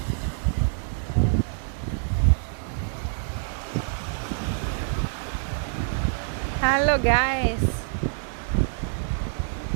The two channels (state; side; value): silent; left; digital silence